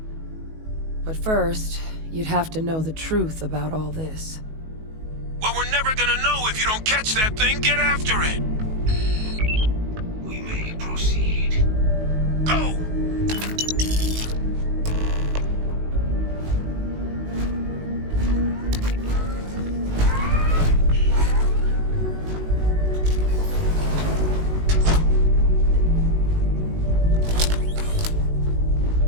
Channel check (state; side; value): late; left; 19 ms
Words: But first, you'd have to know the truth about all this. Well, we're never gonna know if you don't catch that thing. Get after it. We may proceed. Go!